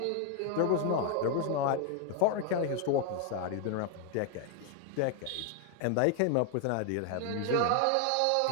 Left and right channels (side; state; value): both; different; correlation 0.01